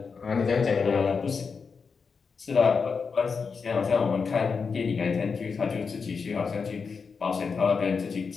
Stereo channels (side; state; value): right; quieter; 5.4 dB